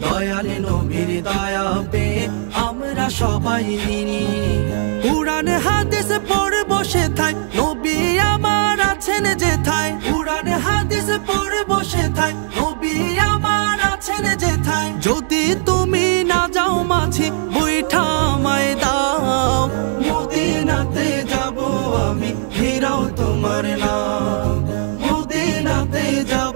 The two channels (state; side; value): silent; left; digital silence